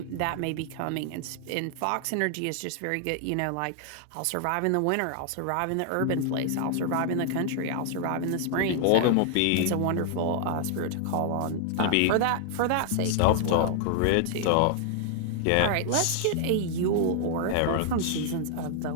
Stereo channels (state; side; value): different; both; correlation 0.00